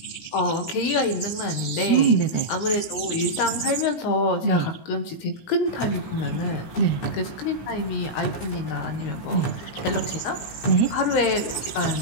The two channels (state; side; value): late; right; 17 ms